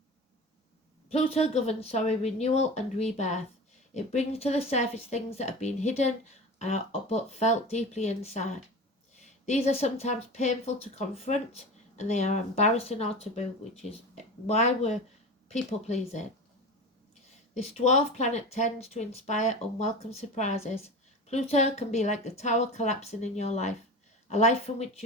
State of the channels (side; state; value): both; normal; correlation 0.30